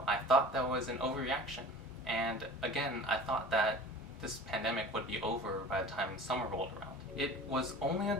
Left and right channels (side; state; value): both; normal; correlation 0.40